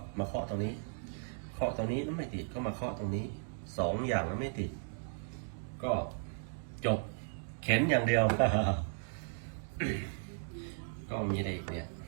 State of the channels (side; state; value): left; silent; digital silence